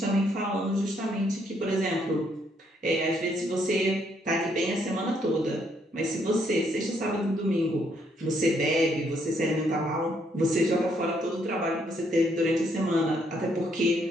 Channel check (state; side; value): normal; both; correlation 0.71